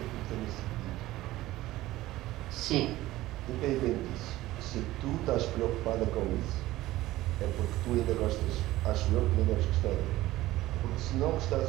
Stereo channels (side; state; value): left; quieter; 16.6 dB